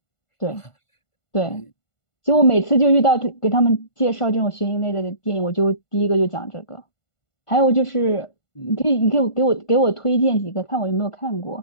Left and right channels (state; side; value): late; right; 1.5 ms